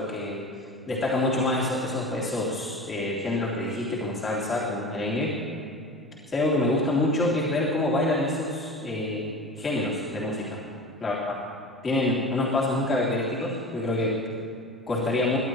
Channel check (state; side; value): normal; both; correlation 0.33